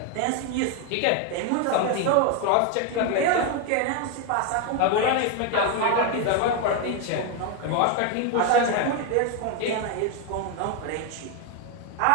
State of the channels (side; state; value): both; different; correlation 0.01